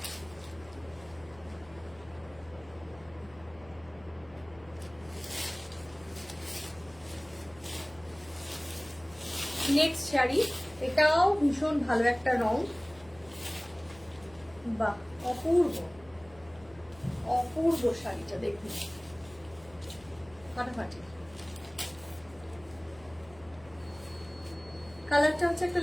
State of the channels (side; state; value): left; noise; hum, 23 dB below the sound